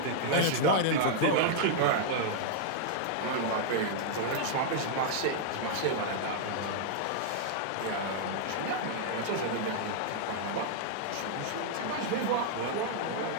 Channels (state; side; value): different; both; correlation -0.01